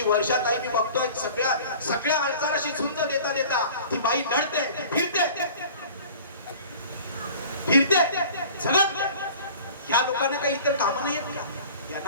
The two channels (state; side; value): inverted; both; correlation -0.44